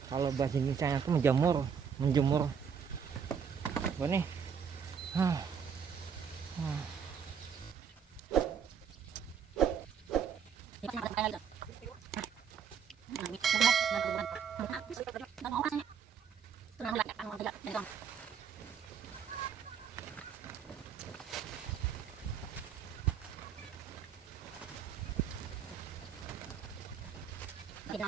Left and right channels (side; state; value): left; quieter; 7.2 dB